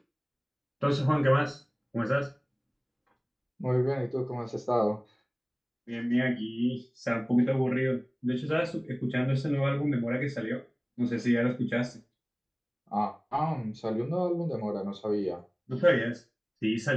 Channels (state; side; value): identical; both; correlation 1.00